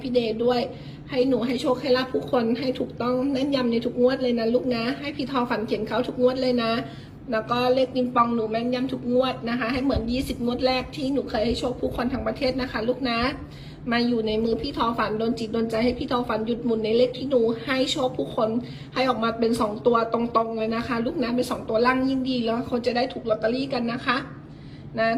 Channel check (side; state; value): both; identical; correlation 1.00